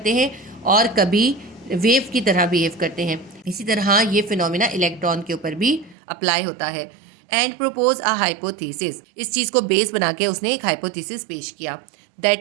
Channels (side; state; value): left; drops out; at 6.0 s